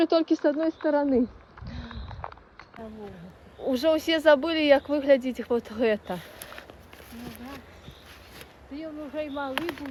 только с одной стороны. Уже все забыли, как выглядит вот это. Ну, да. Ти вже й малий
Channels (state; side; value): identical; both; correlation 1.00